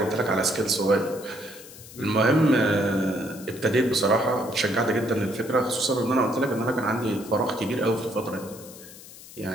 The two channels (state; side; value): noise; left; hiss, 17 dB below the sound